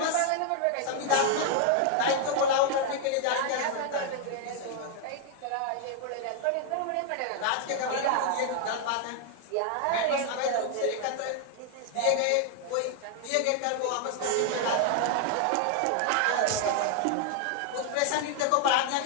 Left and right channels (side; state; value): both; different; correlation 0.00